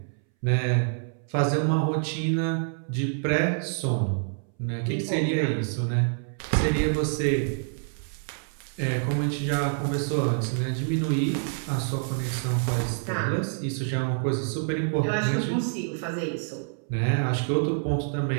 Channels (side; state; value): left; silent; 60 dB below the other